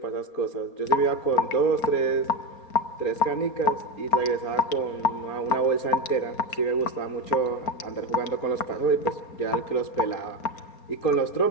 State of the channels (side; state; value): right; late; 4.3 ms